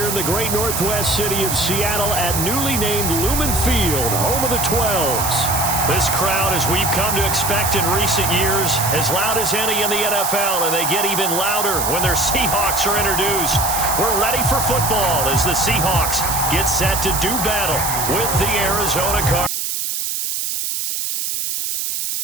in the great northwest city of Seattle at newly named Lumen Field, home of the 12s. This crowd, as we've come to expect in recent years, as loud as any in the NFL, and they get even louder when their Seahawks are introduced. We're ready for football as the Seahawks get set to do battle with the Arizona Cardinals.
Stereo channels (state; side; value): noise; right; hiss, 2 dB below the sound